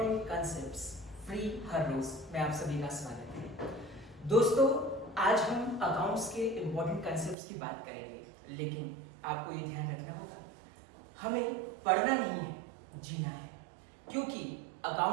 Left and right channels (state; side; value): drops out; left; at 7.4 s